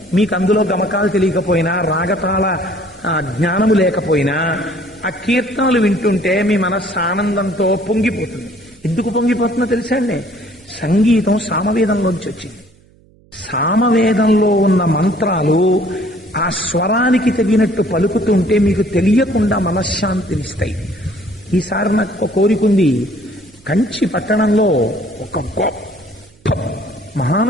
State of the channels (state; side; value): noise; right; hum, 30 dB below the sound